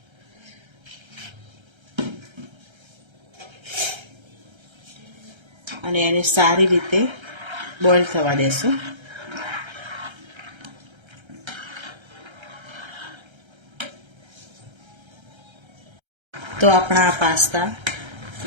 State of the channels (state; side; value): late; left; 1.3 ms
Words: અને એને સારી રીતે બોઇલ થવા દેશું। તો આપણા આ પાસ્તા